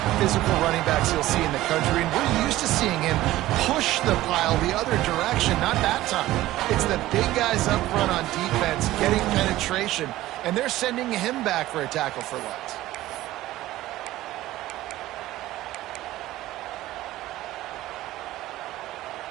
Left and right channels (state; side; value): quieter; left; 15.9 dB